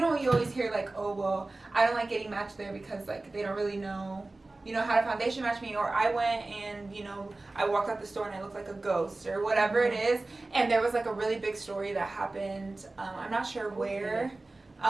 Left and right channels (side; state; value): left; quieter; 3.1 dB